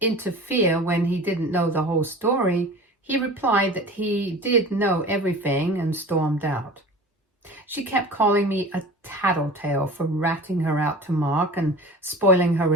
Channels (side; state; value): both; normal; correlation 0.38